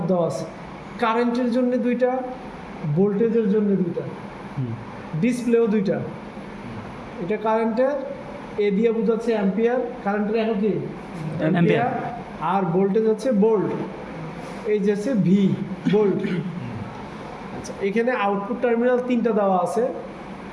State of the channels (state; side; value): identical; both; correlation 1.00